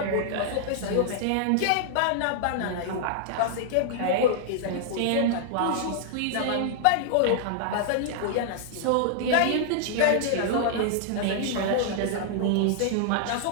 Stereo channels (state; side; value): different; both; correlation -0.01